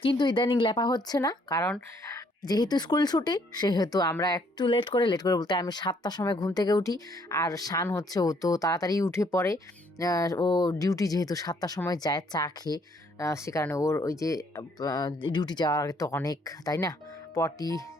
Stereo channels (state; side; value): normal; both; correlation 0.66